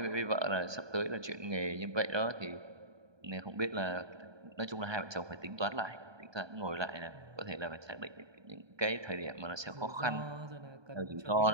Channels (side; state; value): left; late; 1.2 ms